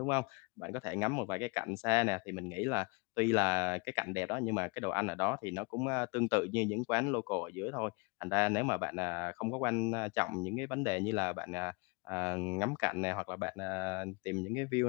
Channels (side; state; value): right; quieter; 30.3 dB